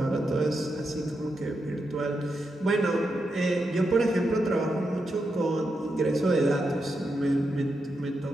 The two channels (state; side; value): normal; both; correlation 0.85